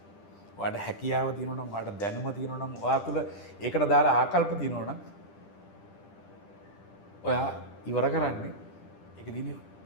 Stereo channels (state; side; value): late; right; 10 ms